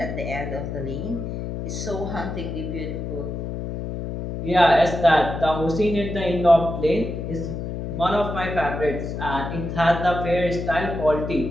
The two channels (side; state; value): left; noise; hum, 5 dB below the sound